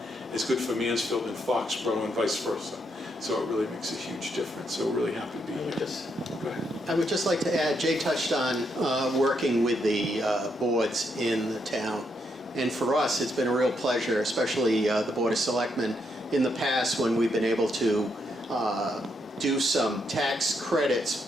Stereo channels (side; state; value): both; normal; correlation 0.78